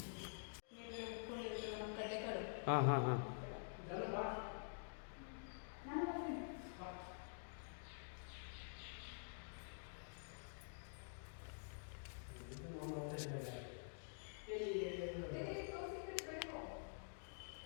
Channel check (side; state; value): right; silent; digital silence